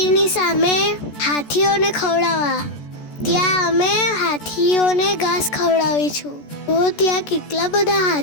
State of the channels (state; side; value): late; right; 14 ms